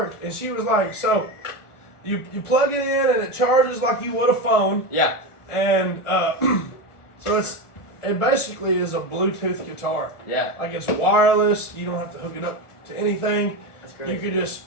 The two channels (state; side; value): late; right; 1.4 ms